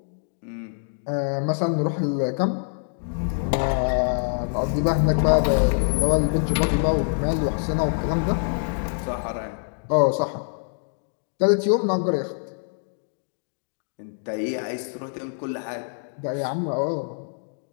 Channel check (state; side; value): silent; right; digital silence